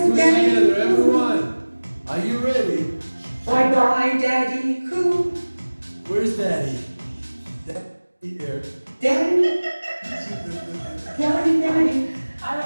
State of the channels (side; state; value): both; inverted; correlation -1.00